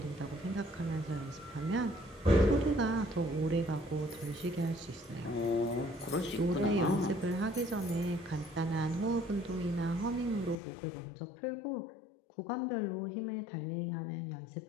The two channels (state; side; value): drops out; right; at 10.6 s